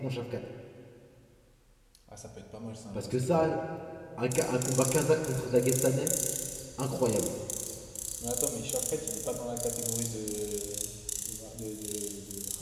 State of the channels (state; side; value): identical; both; correlation 1.00